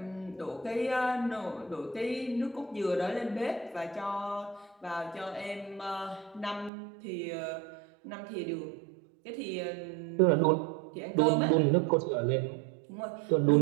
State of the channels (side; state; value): left; drops out; at 6.7 s